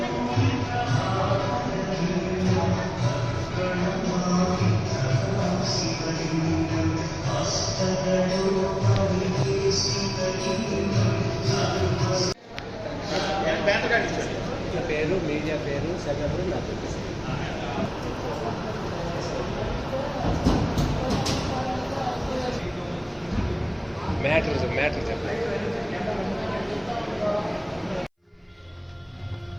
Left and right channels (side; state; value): both; identical; correlation 1.00